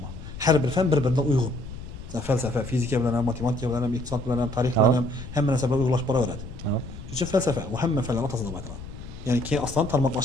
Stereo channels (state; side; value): noise; left; rumble, 12 dB below the sound